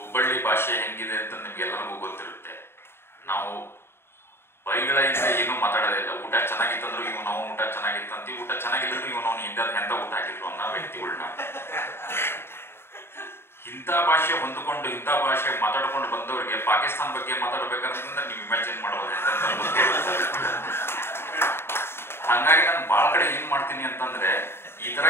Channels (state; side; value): late; right; 0.11 ms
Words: ಭಾಷೆ ಹೆಂಗಿದೆ ಅಂತ ನಿಮ್ಗೆಲ್ಲರಿಗೂ ಗೊತ್ತಿರುತ್ತೆ. ನಾವು ಬೈಗಳಿಂದ ಏನೂ ಮಾತಾಡೋದಿಲ್ಲ. ಊಟ ಚೆನ್ನಾಗಿತ್ತಂದ್ರು ಇವನು ಅವ್ನು ಊಟ ಚೆನ್ನಾಗಿತ್ತಂತೀವಿ, ಊಟ ಚೆನ್ನಾಗಿದ್ರು ಇವನು ಅವ್ನು ಎಂತ ಊಟ ಹಾಕಿದ್ರು ಅನ್ನೋ ವ್ಯಕ್ತಿಗಳನ್ನ. ಇಂಥ ಭಾಷೆ ಹೊಂದಿಕೊಂಡು ಇಂಥ ಭಾಷೆ ಮಾತಾಡ್ಕೊಂಡು ಬಂದವರಿಗೆ ಪಾಕಿಸ್ತಾನ ಬಗ್ಗೆ ಮಾತಾಡ್ಬೇಕಂತಂದ್ರೆ ನೀವು ಇಮ್ಯಾಜಿನ್ ಮಾಡಬಹುದು. ಹಂಗಾಗಿ ನಾನು ಬಹಳ ಕಡೆ ಏನ್ ಮಾಡ್ತೀನಿ ಅಂತಂದ್ರೆ, ಈ ತರ